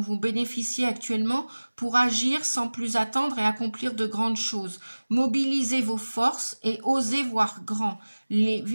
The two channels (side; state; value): both; inverted; correlation -1.00